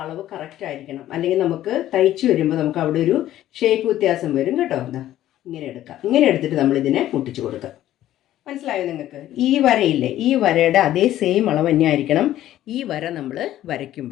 അളവ് കറക്റ്റ് ആയിരിക്കണം. അല്ലെങ്കിൽ നമുക്ക് തയ്ച്ച് വരുമ്പോൾ നമുക്ക് അവിടെ ഒരു ഷേപ്പ് വ്യത്യാസം വരും കേട്ടോ. ഇങ്ങനെ എടുക്കാം. ഇങ്ങനെ എടുത്തിട്ട് നമ്മൾ ഇതിനെ മുട്ടിച്ച് കൊടുക്കാം. മനസ്സിലായോ നിങ്ങൾക്ക്? ഈ വരയില്ലേ, ഈ വരയുടെ അതേ സെയിം അളവ് തന്നെ ആയിരിക്കണം ഈ വര നമ്മൾ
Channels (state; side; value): quieter; right; 13.2 dB